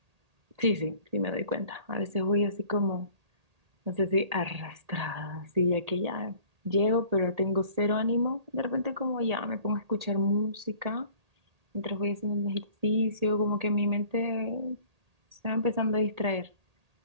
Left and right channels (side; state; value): left; late; 1.8 ms